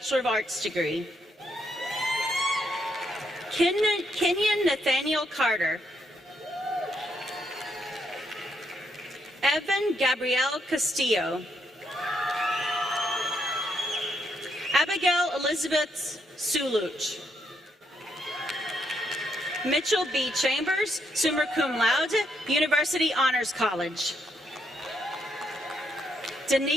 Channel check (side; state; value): both; normal; correlation 0.77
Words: of Arts degree. Kenyon Nathaniel Carter. Evan Gabrielle Castillo. Abigail Elizabeth Suluch. Mitchell B. Chambers, summa cum laude, University Honors College.